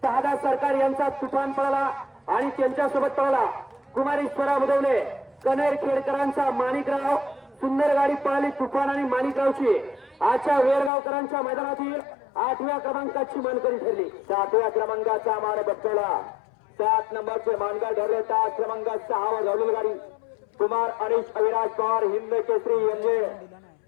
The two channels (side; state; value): right; drops out; at 10.9 s